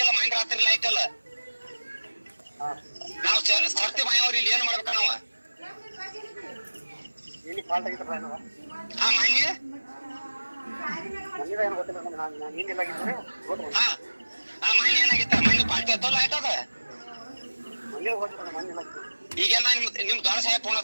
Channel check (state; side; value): inverted; both; correlation -1.00